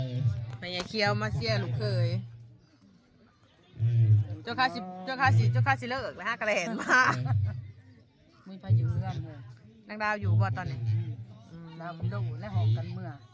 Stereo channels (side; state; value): both; identical; correlation 1.00